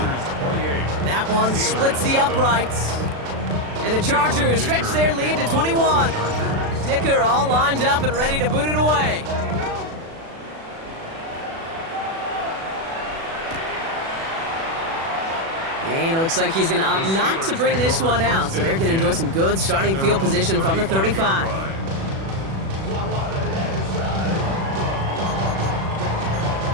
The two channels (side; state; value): left; late; 36 ms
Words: That one splits the uprights. And the Chargers stretch their lead to 21. Dicker all lined up and ready to boot it away. And it looks like he's going to opt not to bring this one out, so they're going to enjoy some good starting field position from the 35.